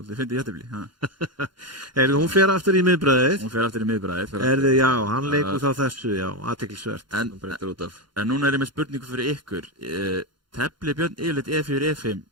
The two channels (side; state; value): left; late; 0.72 ms